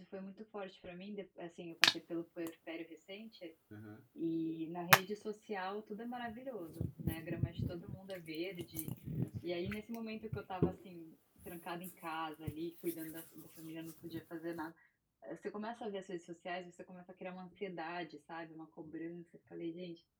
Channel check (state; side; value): identical; both; correlation 1.00